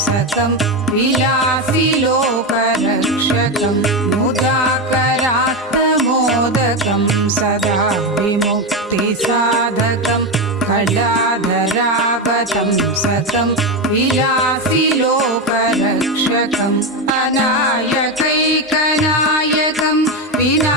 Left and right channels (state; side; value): normal; both; correlation 0.12